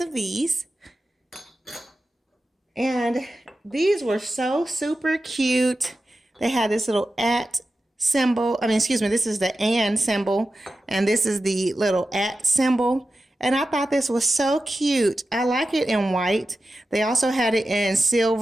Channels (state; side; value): normal; both; correlation 0.92